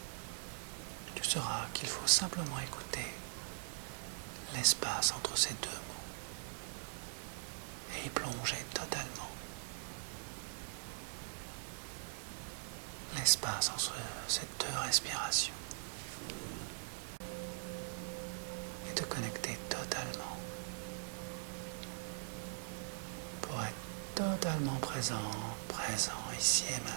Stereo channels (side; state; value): left; silent; digital silence